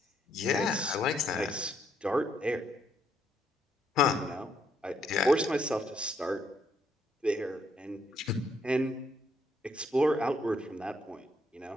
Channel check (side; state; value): both; normal; correlation 0.72